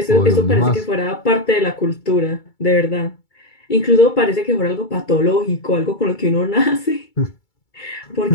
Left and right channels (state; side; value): late; right; 2.3 ms